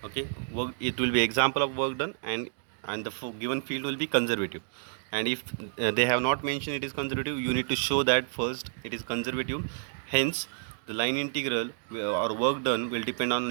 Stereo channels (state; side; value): silent; left; digital silence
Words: Okay, it will be example of work done, and the given field will be conservative. And if they have not mentioned it is conservative, you need to show that first it is conservative. Hence the line integral or work done will depend